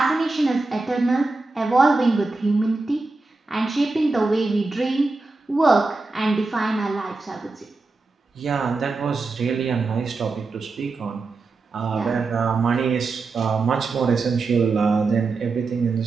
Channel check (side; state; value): left; quieter; 3.7 dB